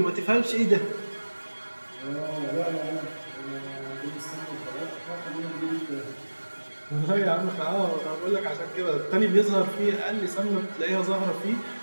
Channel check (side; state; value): both; inverted; correlation -1.00